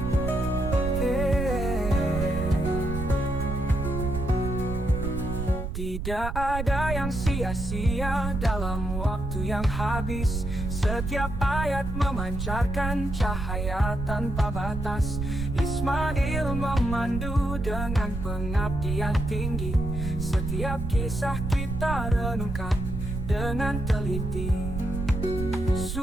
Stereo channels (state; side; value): noise; right; rumble, 4 dB below the sound